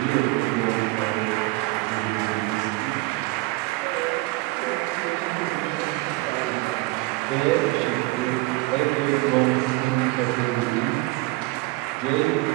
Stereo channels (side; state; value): left; quieter; 22.4 dB